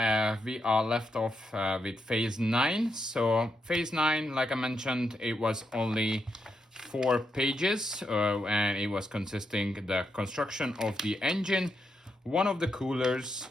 we are left off with phase 9. So phase 9, like I mentioned, it was only 4 pages and it was consisting the construction of the engine, one of the coolers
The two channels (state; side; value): normal; both; correlation 0.82